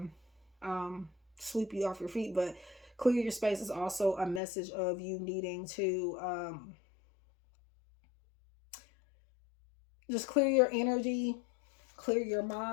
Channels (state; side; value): drops out; right; at 4.4 s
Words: sweep you off your feet. But clear your space is also a message of you needing to just clear your energy, clear your